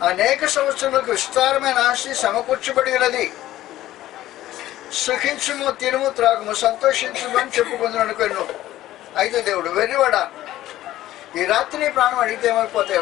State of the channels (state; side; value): quieter; right; 14.5 dB